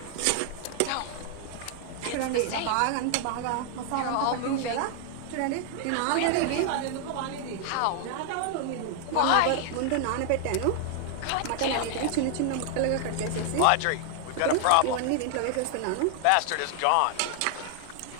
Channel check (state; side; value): different; both; correlation 0.00